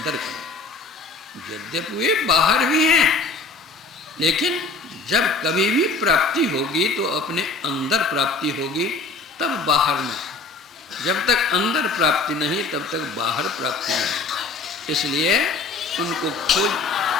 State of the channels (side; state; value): right; quieter; 3.8 dB